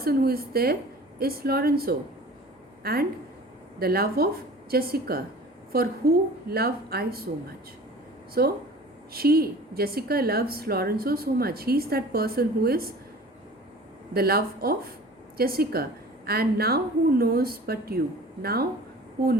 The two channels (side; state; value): both; normal; correlation 0.43